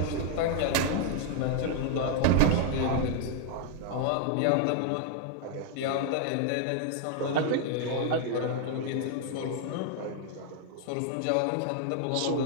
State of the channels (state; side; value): different; both; correlation 0.00